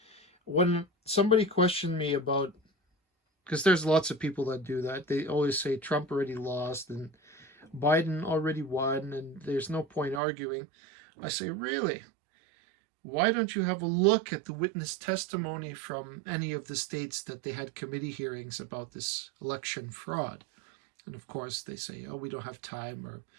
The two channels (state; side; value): drops out; left; at 10.2 s